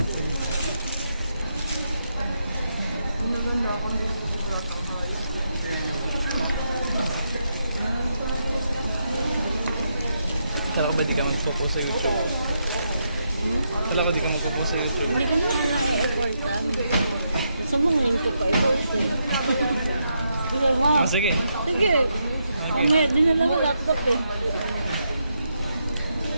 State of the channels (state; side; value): inverted; both; correlation -0.81